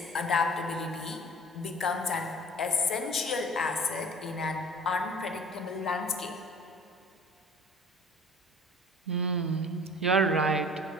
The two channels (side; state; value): both; normal; correlation 0.46